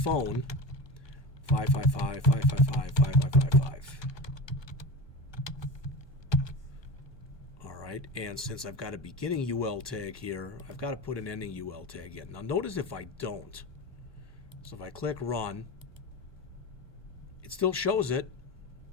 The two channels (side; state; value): right; late; 1.2 ms